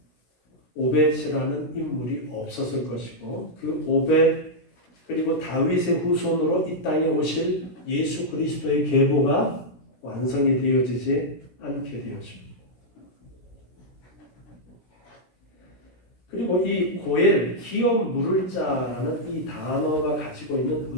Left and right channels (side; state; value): right; late; 17 ms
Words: 오벳이라는 인물이 없었을 것이고 그 오벳 그리고 다윗의 후손으로 이 땅에 오실 예수 그리스도의 계보가 완성이 되어지지 않게 되었습니다. 그리고 이 고엘, 기업 물을 자라는 이 단어가 가지고 있는